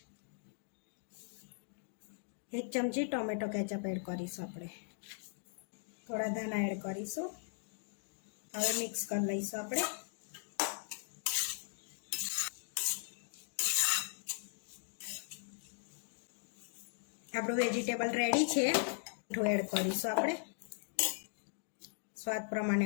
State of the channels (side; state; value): right; silent; digital silence